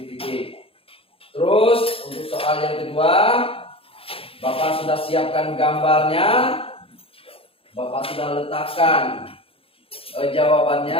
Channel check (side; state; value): right; late; 0.27 ms